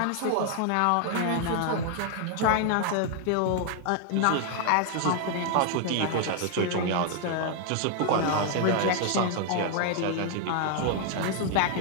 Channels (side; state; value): both; different; correlation 0.00